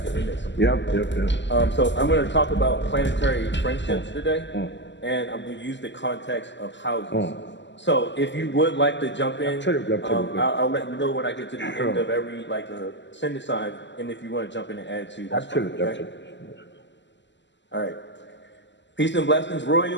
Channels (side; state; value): right; late; 0.53 ms